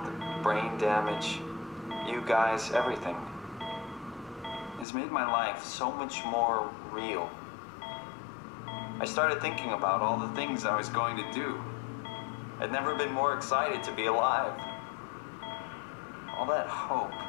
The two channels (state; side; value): drops out; right; at 4.9 s